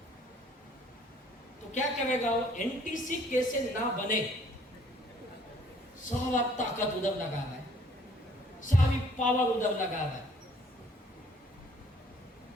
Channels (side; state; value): both; normal; correlation 0.59